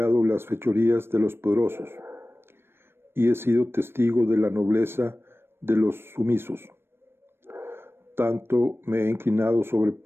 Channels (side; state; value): left; late; 0.12 ms